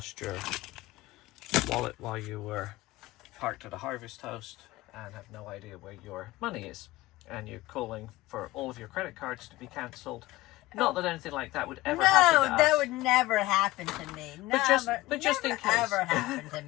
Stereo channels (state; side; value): quieter; right; 18.5 dB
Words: your wallet while you were parked at a harvest host and have no idea where your money is. And you're calling for all of your credit cards to be cancelled. Not that anything like that would ever happen to us. No, that would never happen to me. But just in case. Never happen to